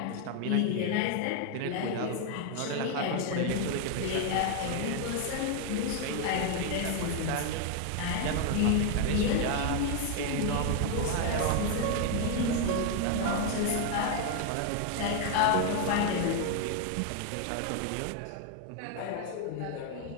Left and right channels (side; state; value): both; different; correlation 0.00